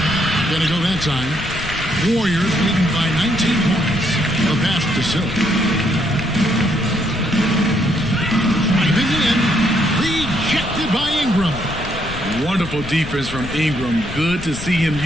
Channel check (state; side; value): noise; left; rumble, 10 dB below the sound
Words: Gonna go that time. Warriors leading by 19 points. A pass to Silk. Driving in. Rejected by Ingram. Wonderful defense from Ingram. Good to see him